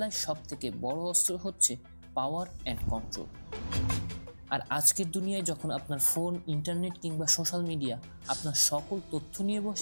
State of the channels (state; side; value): inverted; both; correlation -1.00